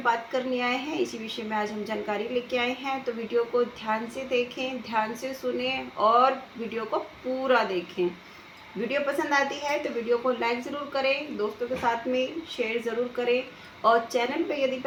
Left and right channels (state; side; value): identical; both; correlation 1.00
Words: करने आए हैं, इसी विषय में आज हम जानकारी लेके आए हैं। तो वीडियो को ध्यान से देखें, ध्यान से सुने और वीडियो को पूरा देखें। वीडियो पसंद आती है तो वीडियो को लाइक ज़रूर करें, दोस्तों के साथ में शेयर ज़रूर करें, और चैनल पे यदि